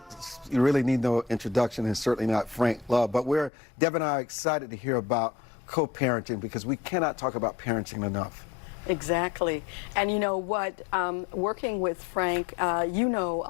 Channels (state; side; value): drops out; right; at 3.5 s